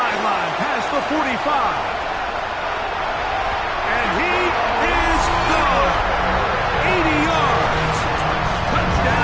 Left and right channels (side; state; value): both; identical; correlation 1.00